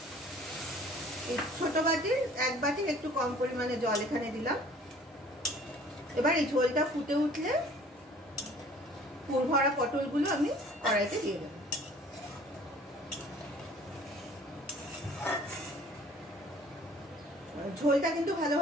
এই ছোট বাটির 1 বাটির একটু কম পরিমাণে জল এখানে দিলাম। এবার এই ঝোলটা ফুটে উঠলে পুর ভরা পটলগুলো আমি কড়াইতে দিয়ে দেবো। ঝোলটা কিন্তু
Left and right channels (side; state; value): both; normal; correlation 0.52